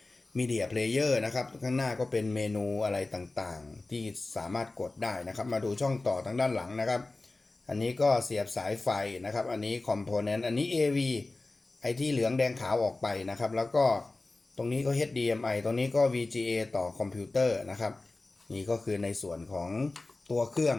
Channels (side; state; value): right; quieter; 3.2 dB